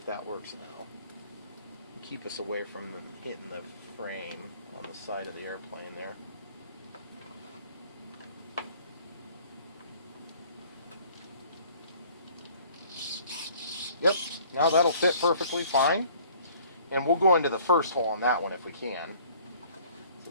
that works now. Keep us away from hitting the frame on the side of the airplane there. Yep, now that'll fit perfectly fine. And we'll go into the first hole on that one if we can. So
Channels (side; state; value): both; inverted; correlation -0.54